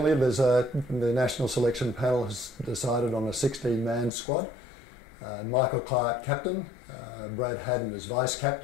The national selection panel has decided on a 16-man squad. Michael Clarke captain, Brad Haddin as vice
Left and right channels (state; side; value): drops out; right; at 4.1 s